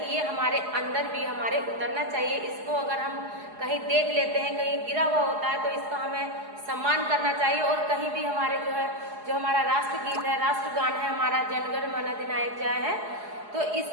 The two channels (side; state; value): left; late; 4.8 ms